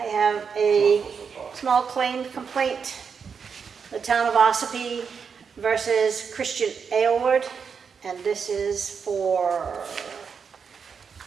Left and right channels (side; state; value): left; quieter; 6.2 dB